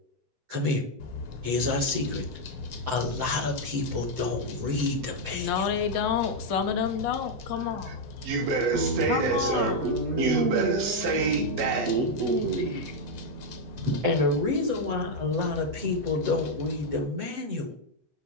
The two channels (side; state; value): left; late; 7.8 ms